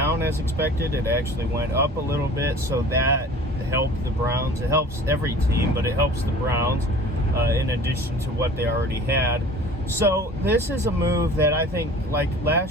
as expected. It actually went up a little bit, so that helped the Browns. It helps every team, but it helps the Browns in addition to what they already had. So this is a move that I think, like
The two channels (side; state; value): both; normal; correlation 0.44